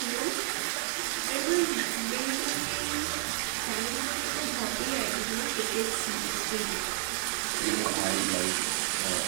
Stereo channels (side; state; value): left; silent; 55 dB below the other